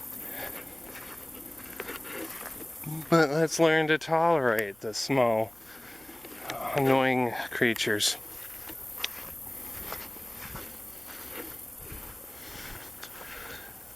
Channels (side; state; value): left; noise; hum, 29 dB below the sound